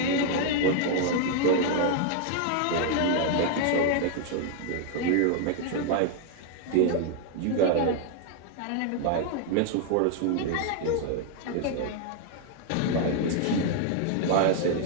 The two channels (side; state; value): both; different; correlation 0.00